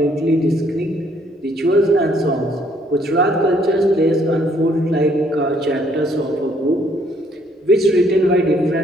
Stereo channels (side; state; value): both; normal; correlation 0.66